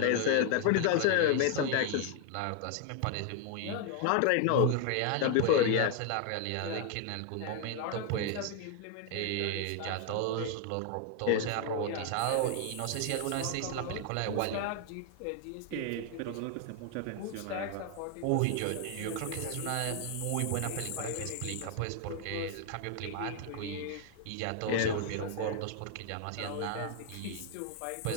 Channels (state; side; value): different; both; correlation 0.00